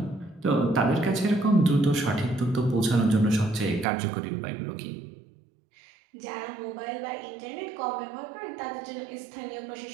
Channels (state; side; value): drops out; left; at 3.9 s